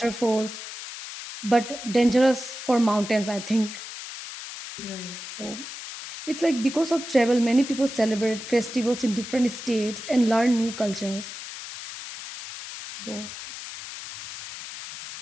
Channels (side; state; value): left; noise; hiss, 11 dB below the sound